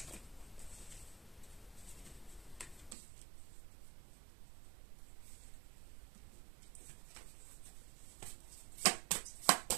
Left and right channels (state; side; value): drops out; left; at 3.0 s